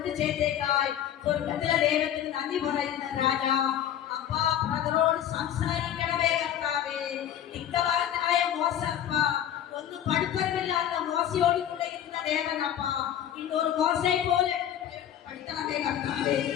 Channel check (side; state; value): right; quieter; 10.5 dB